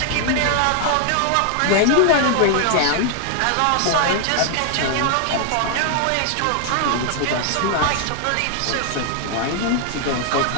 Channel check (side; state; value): both; different; correlation 0.00